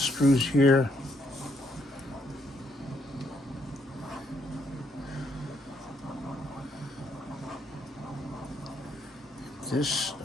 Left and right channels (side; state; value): both; normal; correlation 0.73